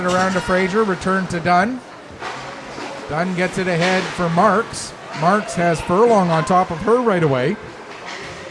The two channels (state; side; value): identical; both; correlation 1.00